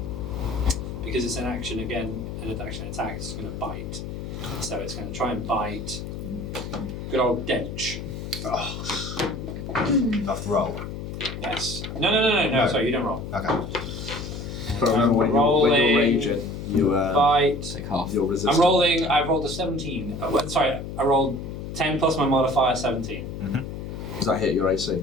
because it's an action again. An action attack. It's going to bite. So it's going to try and bite. Good old Dench. Have to roll. Yes. No. Sorry, you don't roll. Okay. But remember when you're raging, you Bite. Take half. you're resistant. I'm rolling. I rolled a 17. Sorry, I rolled 10 plus my modifier 17. Does that hit your AC?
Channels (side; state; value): left; noise; hum, 7 dB below the sound